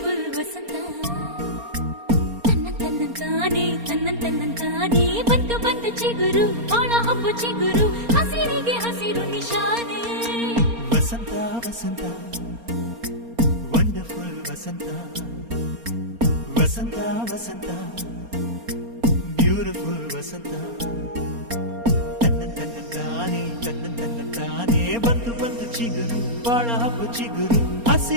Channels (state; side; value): late; left; 4.3 ms